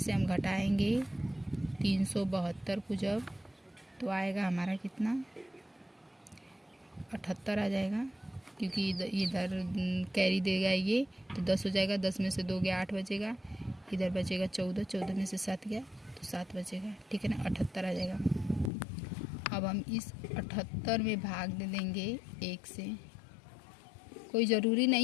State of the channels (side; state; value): right; drops out; at 18.7 s